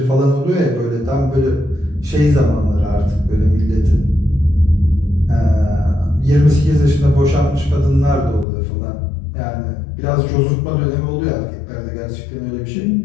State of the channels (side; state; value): right; drops out; at 8.5 s